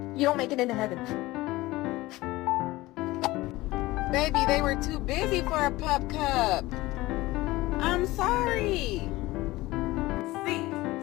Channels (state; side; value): quieter; right; 19.1 dB